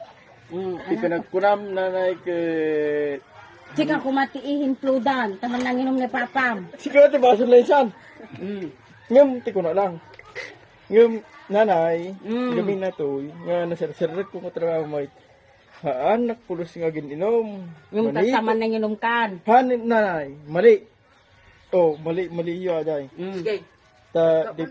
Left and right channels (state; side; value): identical; both; correlation 1.00